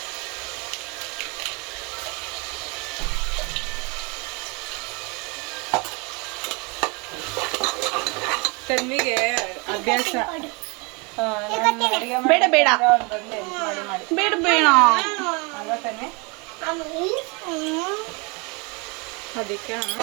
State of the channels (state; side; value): quieter; left; 29.7 dB